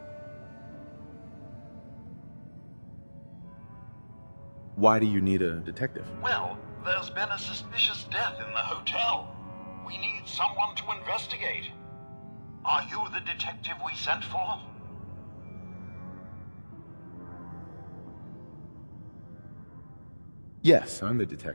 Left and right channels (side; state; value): both; inverted; correlation -1.00